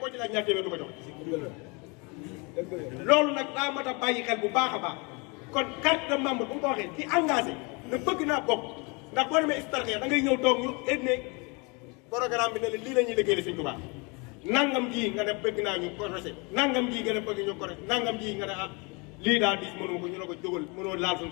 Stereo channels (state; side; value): quieter; right; 30.1 dB